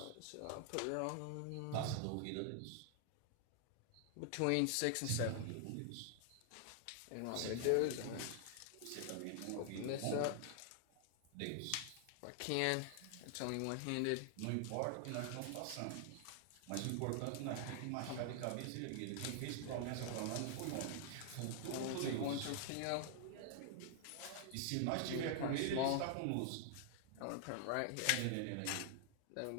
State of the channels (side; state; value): both; different; correlation 0.00